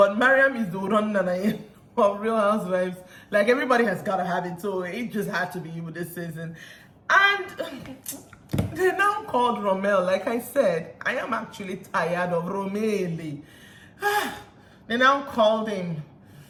Mariam is the run of Real Housewives. Like, everybody has got to have it, so it just had to be you this season. And they now called Rommel. Like I said, I am actually tired of Romeli. They now called him.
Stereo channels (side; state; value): both; identical; correlation 1.00